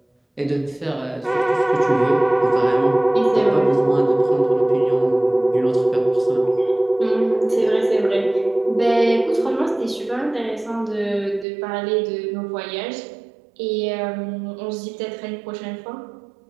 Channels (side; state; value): left; drops out; at 11.5 s